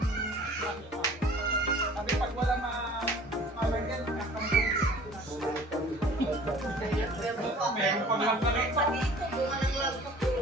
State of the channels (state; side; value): normal; both; correlation 0.48